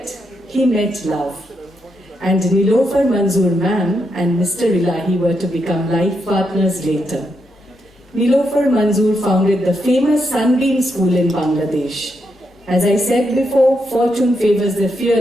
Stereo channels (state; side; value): normal; both; correlation 0.81